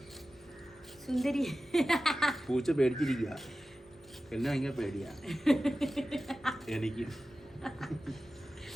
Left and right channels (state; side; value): normal; both; correlation 0.95